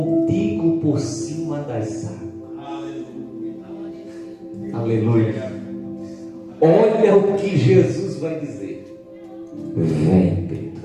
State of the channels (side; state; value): both; identical; correlation 1.00